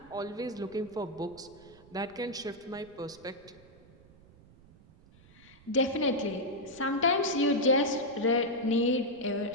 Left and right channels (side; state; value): right; noise; rumble, 24 dB below the sound